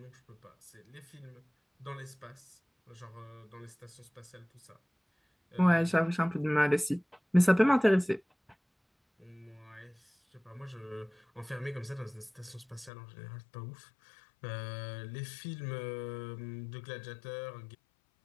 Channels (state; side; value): drops out; right; at 12.9 s